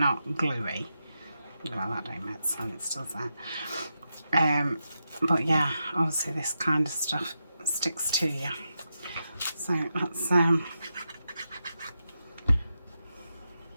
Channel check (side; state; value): both; inverted; correlation -0.87